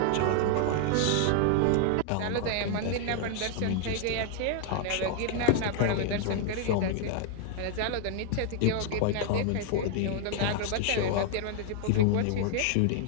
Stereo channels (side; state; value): both; different; correlation 0.00